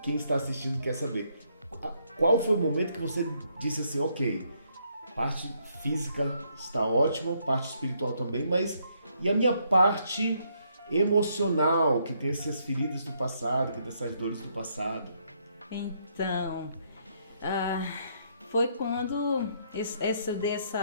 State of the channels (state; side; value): inverted; both; correlation -0.72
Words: quem está assistindo quer saber? Qual foi o momento que você disse assim, ok, parte física está ótima, parte espiritual também, mas e a minha parte emocional, que tem essas feridas do passado, que tem essas dores do passado? Então, foi quando